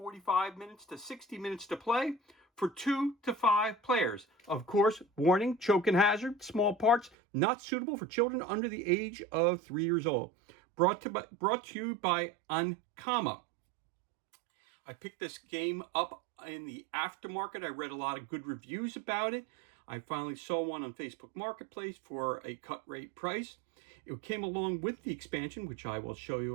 minutes to 60 minutes to play for 2 to 5 players. Of course, warning, choke and hazard, small parts, not suitable for children under the age of 3 years old. Brought to you by Ankama. I picked this game up in the aftermarket. I read a lot of good reviews about it. I finally saw one on Facebook Marketplace for a cut rate price. It came along with the expansion, which I will show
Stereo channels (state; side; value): drops out; left; at 7.1 s